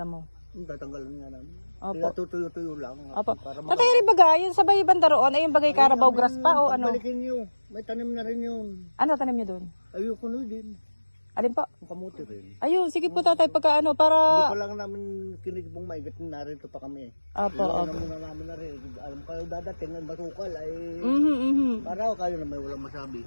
Tatanggalan nga namin. Opo. Kaya tutuyo-tuyo lang. Opo. Para Tatay rin baga, yung sabay banda roon ay yung bagay Carabao grass pa o ano? Balikin nyo. May tanim na rin yun. Ano tanim niyo doon? Ayoko na din. Alin po? Ang kamuti rin. Ayun, sige po tatay, pagka ano, Hindi para... pa lang namin kinigibong maigat na narito pa kami. Opo, Ilan opo. na muna namin na rin. Alam kayo dadating ang basukal ay... Para kayo na may walang masabi.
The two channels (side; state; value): both; inverted; correlation -1.00